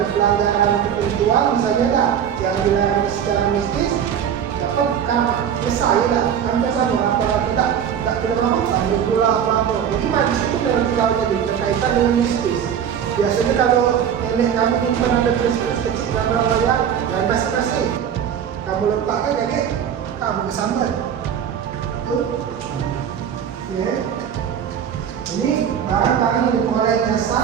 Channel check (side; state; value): left; quieter; 8.6 dB